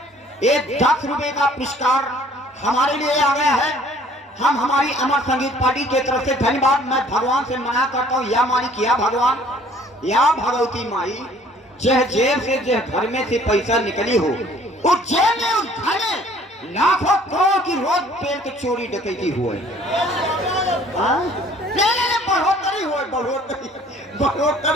एक 10 रुपए का पुरस्कार हमारे लिए आ गया है। हम हमारी अमर संगीत पार्टी के तरफ से धन्यवाद मैं भगवान से मना करता हूँ। या मालिक या भगवान या भगवती माई, जह जेब से जह घर में से पैसा निकली हो, उस जेब में उस घर में लाखों करोड़ की रोज पेड़ के चोरी डकैती हुए। बढ़ोतरी हो,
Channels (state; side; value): normal; both; correlation 0.55